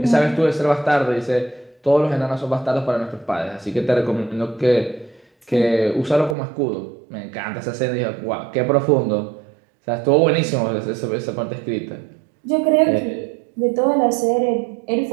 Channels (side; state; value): left; drops out; at 6.4 s